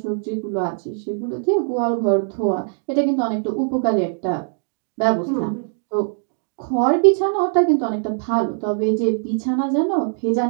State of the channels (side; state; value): left; silent; digital silence